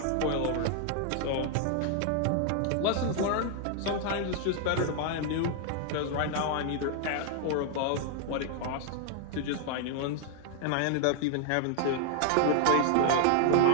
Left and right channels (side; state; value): both; different; correlation 0.00